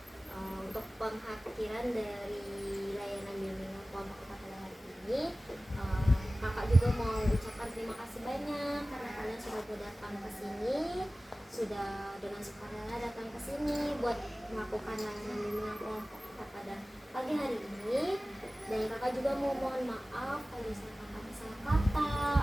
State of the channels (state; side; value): normal; both; correlation 0.97